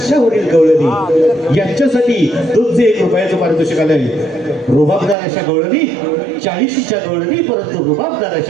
गवळणी यांच्यासाठी 201 रुपयाचं पारितोषिक आलंय. रुबाबदार अशा गवळणी, 40च्या गवळणी, परंतु रुबाबदार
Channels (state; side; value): drops out; left; at 5.2 s